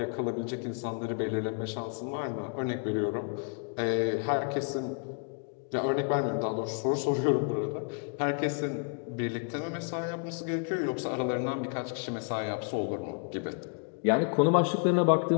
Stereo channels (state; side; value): quieter; right; 39.9 dB